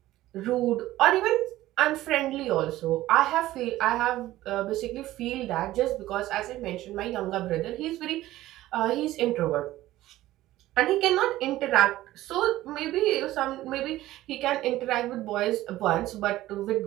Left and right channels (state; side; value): quieter; left; 15.7 dB